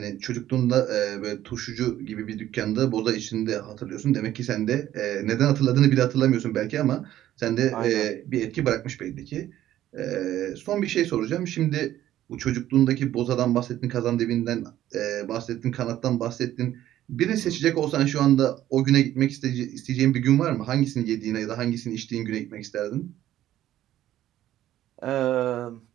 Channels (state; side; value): quieter; left; 12.9 dB